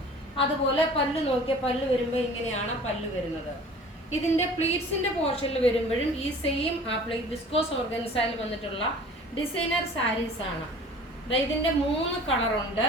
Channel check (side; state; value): both; normal; correlation 0.46